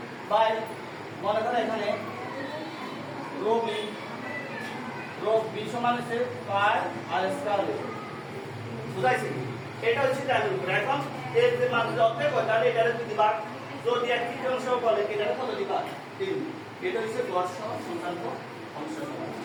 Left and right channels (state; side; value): identical; both; correlation 1.00